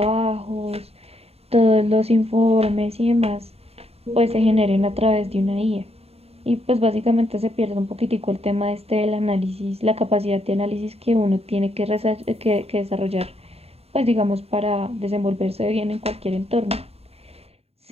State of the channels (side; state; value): left; late; 0.29 ms